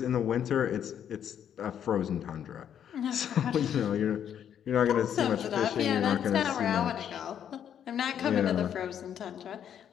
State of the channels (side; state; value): right; quieter; 9.2 dB